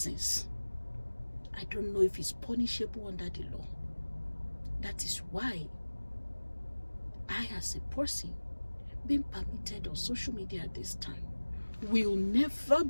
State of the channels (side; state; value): both; inverted; correlation -1.00